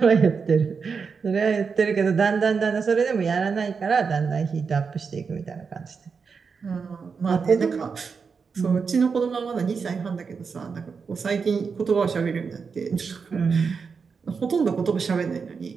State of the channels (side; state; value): left; quieter; 5.5 dB